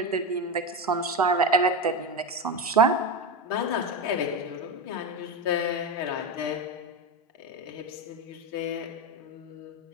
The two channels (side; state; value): both; normal; correlation 0.17